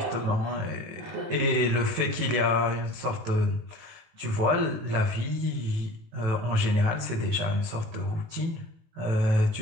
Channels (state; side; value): late; left; 18 ms